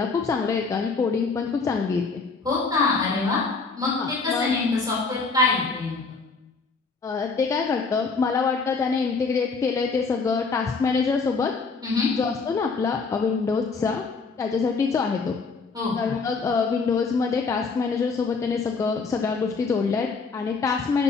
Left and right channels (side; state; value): right; quieter; 4.5 dB